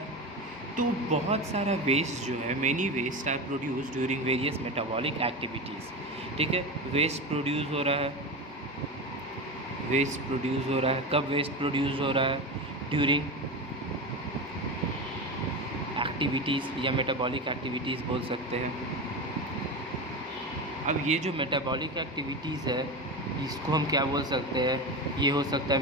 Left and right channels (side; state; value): both; normal; correlation 0.23